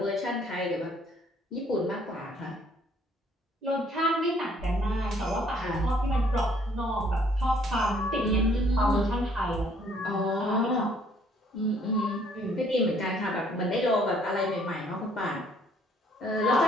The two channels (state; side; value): normal; both; correlation 0.63